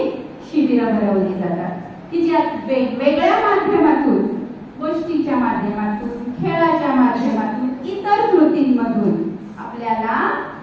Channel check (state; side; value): identical; both; correlation 1.00